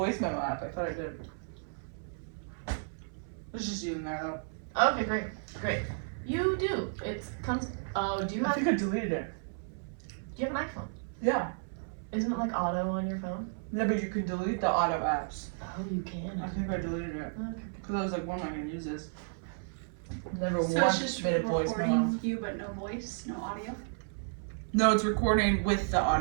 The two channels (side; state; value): left; silent; 56 dB below the other